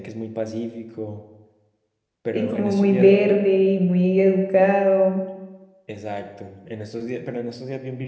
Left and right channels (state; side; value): identical; both; correlation 1.00